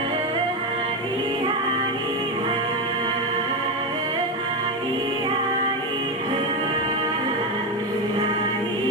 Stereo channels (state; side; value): normal; both; correlation 0.12